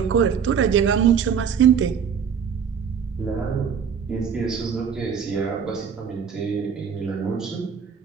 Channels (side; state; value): left; quieter; 7.1 dB